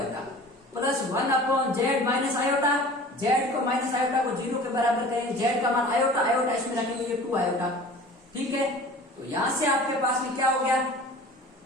plus 1/z minus iota, z को माइनस आयोटा को 0 के बराबर करेंगे, z का मान आयोटा, आयोटा इसमें रखेंगे ये 2 आयोटा। ठीक है, तो यहां से आपके पास में क्या हो गया,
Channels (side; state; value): both; normal; correlation 0.42